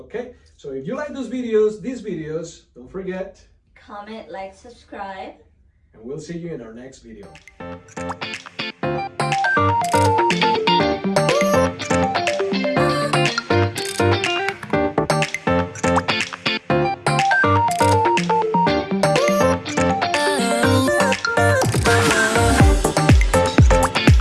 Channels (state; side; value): identical; both; correlation 1.00